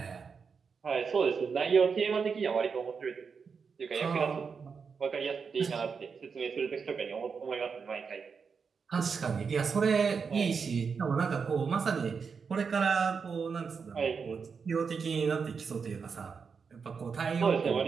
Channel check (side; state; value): left; quieter; 5.7 dB